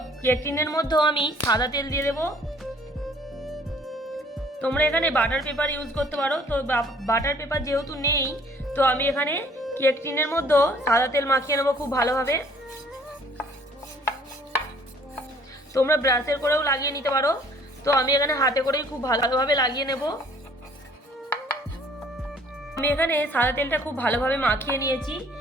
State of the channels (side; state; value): both; normal; correlation 0.57